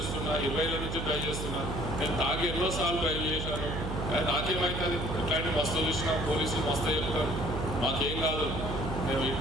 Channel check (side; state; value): right; noise; hum, 4 dB below the sound